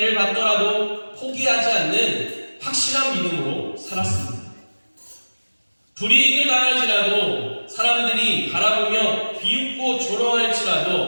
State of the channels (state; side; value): inverted; both; correlation -1.00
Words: 받더라도 포기하지 않는 확실한 믿음으로 살았습니다. 불이익을 당할지라도 사람들이 바라보며 비웃고